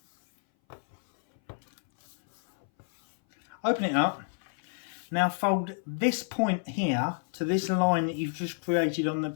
Open it up. Now fold this point here to this line that you've just created on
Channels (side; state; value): right; silent; 58 dB below the other